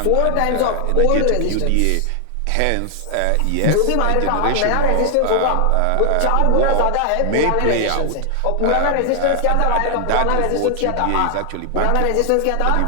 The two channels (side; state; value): both; different; correlation 0.00